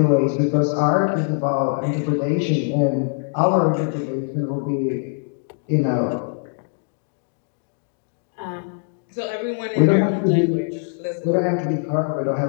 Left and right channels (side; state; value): right; silent; 64 dB below the other